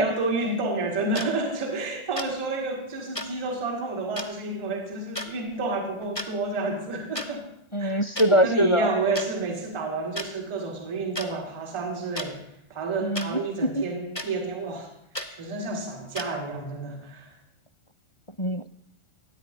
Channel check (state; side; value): late; right; 1.4 ms